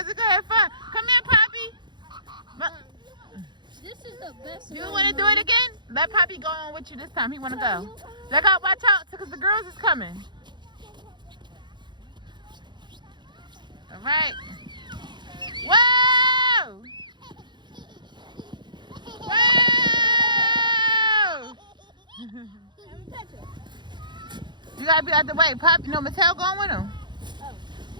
we're gonna have fun. Come here, Poppy. This is the best. You want to do it again? Let Poppy go on with you this time. He want to go. Look out, watch out, because the girls is coming. All right. Whoa! Whoa! You gotta be out the way. Poppy, no, Mateo going with him.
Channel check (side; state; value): left; late; 0.22 ms